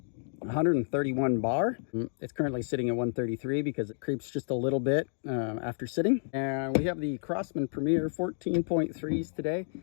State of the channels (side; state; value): right; silent; digital silence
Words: 131 bar. It's currently sitting at 133 because it creeps just a little bit after sitting. And we have the Crosman Premier 14.3s today.